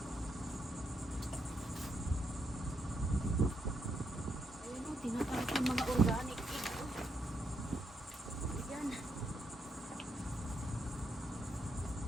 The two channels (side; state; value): both; normal; correlation 0.79